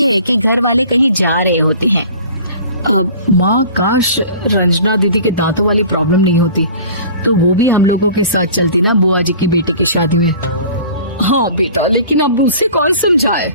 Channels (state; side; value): inverted; both; correlation -0.44